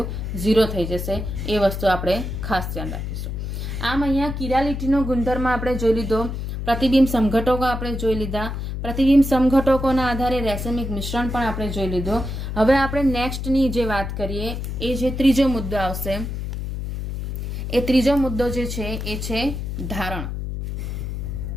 0 થઈ જશે. એ વસ્તુ આપણે ખાસ ધ્યાન રાખીશું. આમ અહીંયા કિરાલિટીનો ગુણધર્મ આપણે જોઈ લીધો, પ્રતિબિંબ સમઘટકો આપણે જોઈ લીધા, પ્રતિબિંબ સમઘટકોના આધારે રેસેમિક મિશ્રણ પણ આપણે જોઈ લીધો. હવે આપણે નેક્સ્ટની જે વાત કરીએ એ જે ત્રીજો મુદ્દો આવશે, એ ત્રીજો મુદ્દો જે છે એ છે ધારણ.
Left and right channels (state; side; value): noise; left; hum, 5 dB below the sound